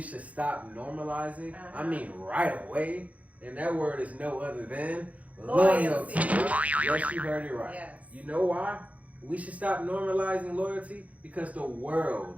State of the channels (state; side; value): late; left; 0.068 ms